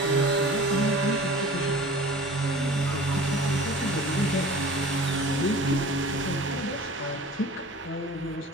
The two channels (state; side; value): normal; both; correlation 0.42